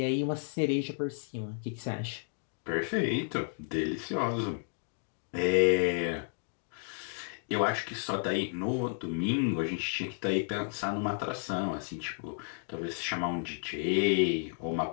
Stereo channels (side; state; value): right; silent; digital silence